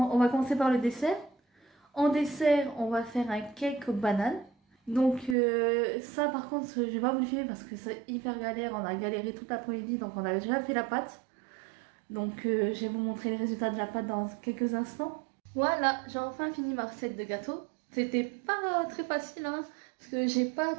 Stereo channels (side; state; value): left; drops out; at 5.4 s